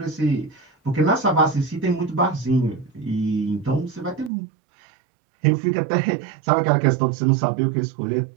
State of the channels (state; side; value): drops out; left; at 4.3 s